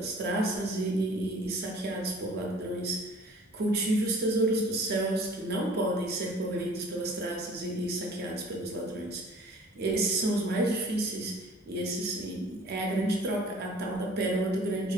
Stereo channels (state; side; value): normal; both; correlation 0.50